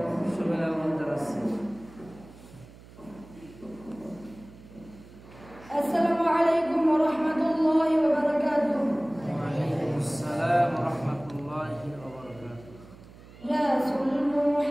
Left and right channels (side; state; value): right; noise; hum, 20 dB below the sound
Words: সবাই আহ্বান জানাচ্ছি। আসসালামু আলাইকুম ওয়া রাহমাতুল্লাহি ওয়া বারাকাতুহু। ওয়া আলাইকুম আসসালাম ওয়া রাহমাতুল্লাহি ওয়া বারাকাতুহু। রাসূল